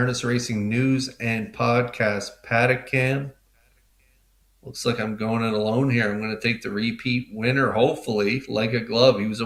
Racing news and podcast paddock cam. Looks like I'm going it alone here. I'm going to take the repeat winner, hopefully, like a glove. He was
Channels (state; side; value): identical; both; correlation 1.00